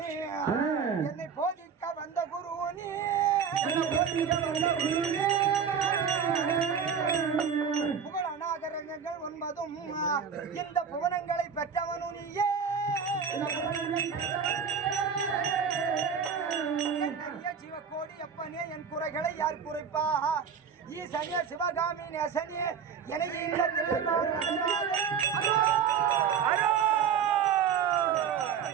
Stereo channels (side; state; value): left; quieter; 6.9 dB